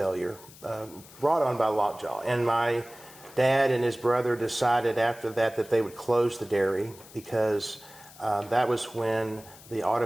brought on by lockjaw. And my dad and his brother decided after that they would close the dairy because that was when the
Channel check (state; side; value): noise; left; hiss, 21 dB below the sound